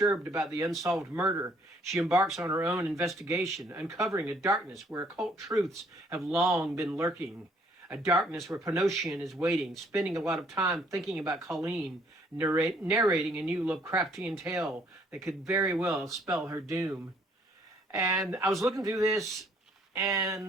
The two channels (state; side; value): normal; both; correlation 0.63